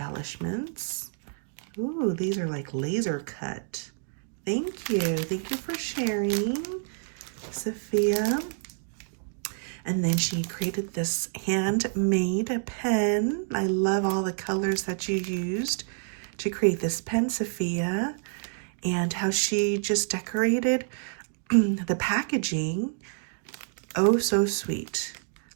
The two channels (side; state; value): left; silent; digital silence